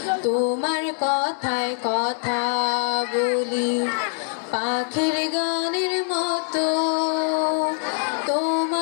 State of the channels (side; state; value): right; silent; 60 dB below the other